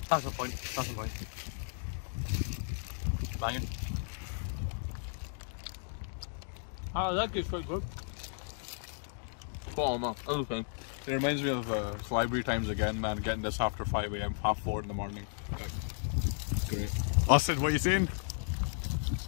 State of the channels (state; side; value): silent; right; digital silence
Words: That's the point. That's the point. Banging. Ah, that gets quite good. Spot on, man. Okay. It reminds me of library times again, man. Getting this after 5 AM, 4:30 in the morning. Great. Austin, what are you saying?